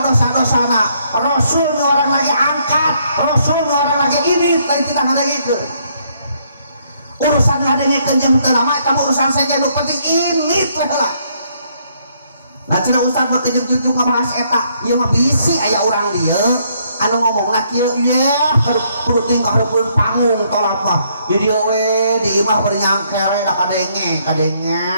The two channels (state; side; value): inverted; both; correlation -0.70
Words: dosa-dosana. Rasul nu orang lagi angkat, Rasul nu orang lagi ini lain tidak ngadengikeun. Urusan ngadengikeun jeung teu lama eta urusan saja nu penting ini teh heula. Nah cenah ustaz mah kejuk-jujuk ngebahas eta ieu mah bisi aya urang dieu anu ngomongna kieu yeh kudu tinggal hareupeun panggung tolak mah di dieu we di imah bari nyangkere da kadenge